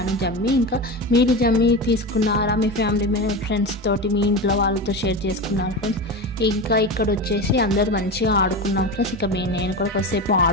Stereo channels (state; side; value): normal; both; correlation 0.23